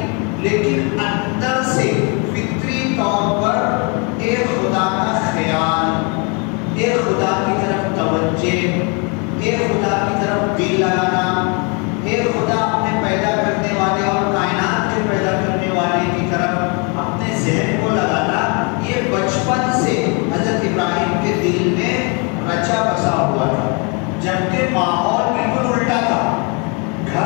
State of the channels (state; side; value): quieter; right; 33.6 dB